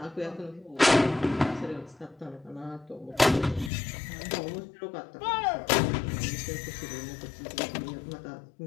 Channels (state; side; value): drops out; right; at 3.7 s